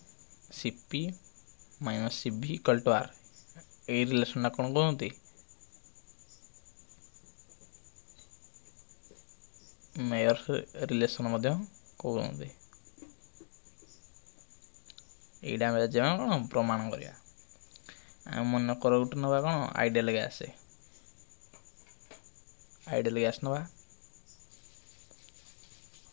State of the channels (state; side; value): silent; right; digital silence